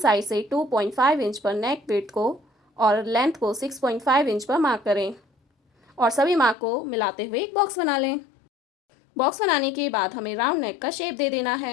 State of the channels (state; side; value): drops out; right; at 6.6 s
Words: से 2.5 इंच पर नेक विड्थ को और लेंथ को 6.5 इंच पर मार्क करें और सभी मार्क को मिलाते हुए एक बॉक्स बना लें। बॉक्स बनाने के बाद हमें राउंड नेक का शेप दे देना